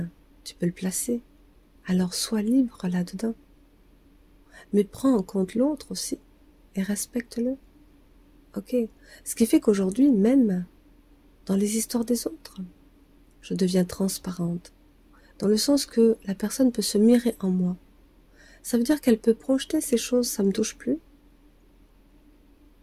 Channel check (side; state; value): both; identical; correlation 1.00